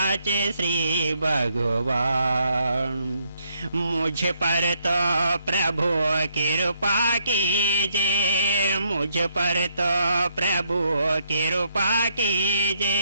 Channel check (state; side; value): inverted; both; correlation -0.73